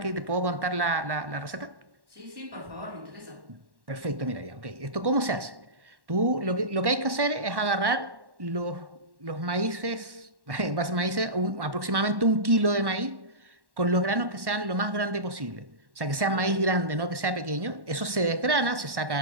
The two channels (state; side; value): late; left; 1.1 ms